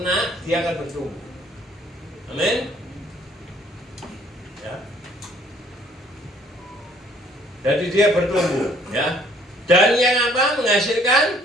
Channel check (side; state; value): both; normal; correlation 0.60